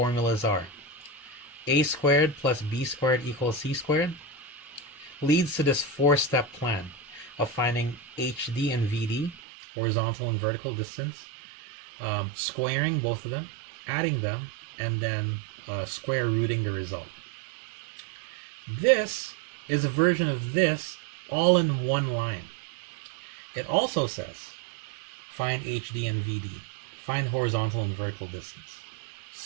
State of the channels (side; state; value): left; drops out; at 9.4 s